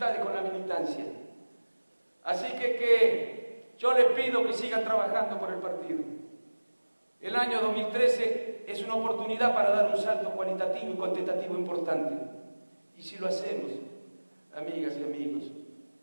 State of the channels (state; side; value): inverted; both; correlation -1.00